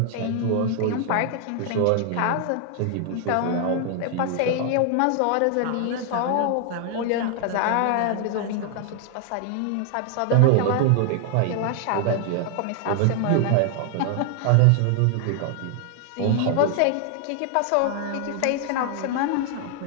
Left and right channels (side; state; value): both; different; correlation 0.00